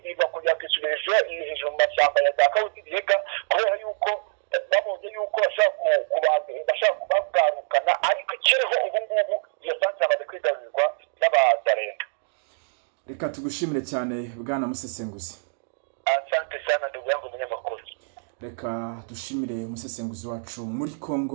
kugira ngo isubirije hejuru mu mashyamba ya za Kawuzi-Biega, kubera yuko babonye yuko bashaka kubagarukana, ariko ikiriho ubu ngubu iyo centre amaze kwigarurirwa n'abazarenda. Reka tugushimire cyane bwana musesenguzi. Asante sana ndugu yangu munyamakuru. Reka dushimire umusesenguzi wacu muri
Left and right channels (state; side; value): silent; left; digital silence